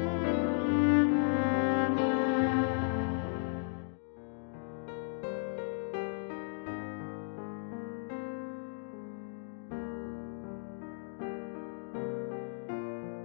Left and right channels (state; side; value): silent; right; digital silence